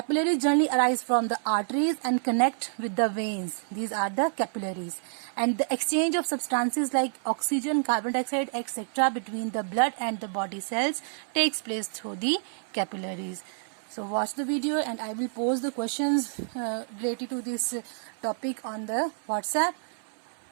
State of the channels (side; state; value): left; silent; 58 dB below the other